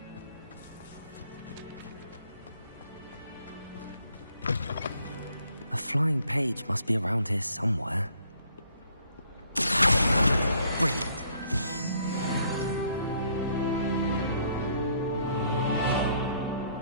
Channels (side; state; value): both; inverted; correlation -0.65